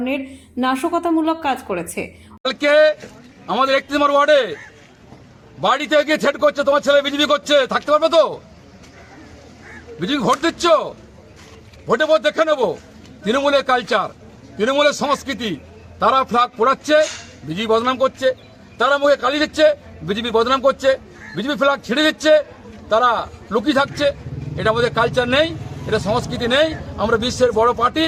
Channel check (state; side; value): identical; both; correlation 1.00